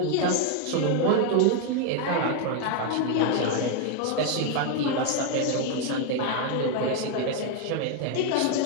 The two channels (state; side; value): different; both; correlation 0.01